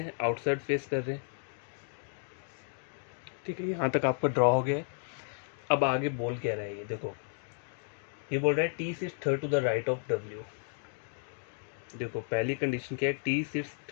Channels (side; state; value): right; silent; 56 dB below the other